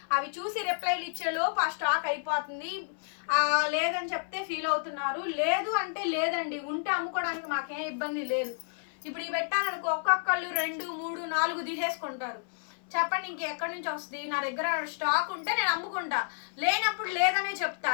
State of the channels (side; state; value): right; silent; 57 dB below the other